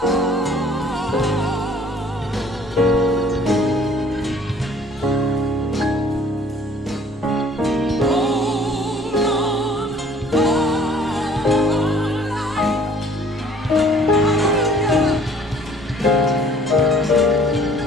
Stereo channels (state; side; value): normal; both; correlation 0.54